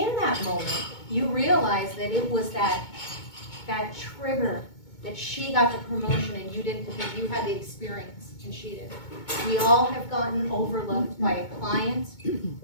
that moment, you realize that it was that trigger that she got the promotion and you didn't, because you had the experience and she didn't. We all have gotten overlooked by a client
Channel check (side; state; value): right; late; 2.2 ms